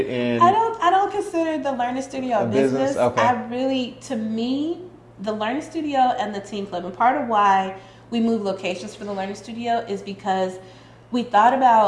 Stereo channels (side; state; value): both; identical; correlation 1.00